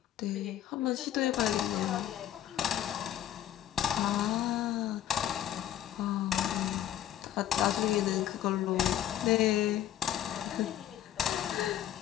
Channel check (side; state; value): right; quieter; 11.7 dB